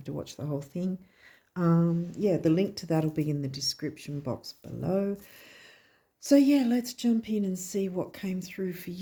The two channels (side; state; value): both; identical; correlation 1.00